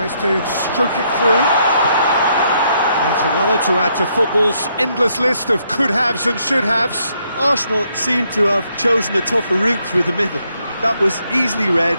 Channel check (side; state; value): both; inverted; correlation -0.74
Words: to stroke it through. That's another to add to football's endless list of could-haves and should-haves. Arsenal seem to have chosen a tougher route through the middle. That was easily read